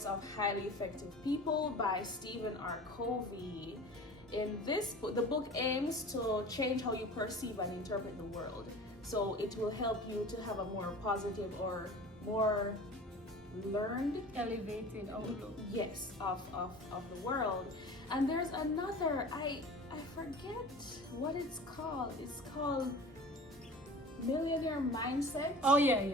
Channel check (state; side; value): normal; both; correlation 0.39